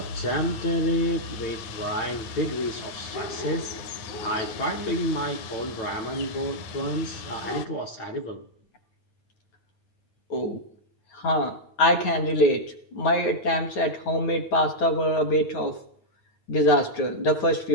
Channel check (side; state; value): right; late; 9.3 ms